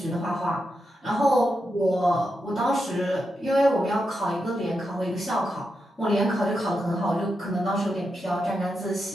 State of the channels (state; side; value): normal; both; correlation 0.86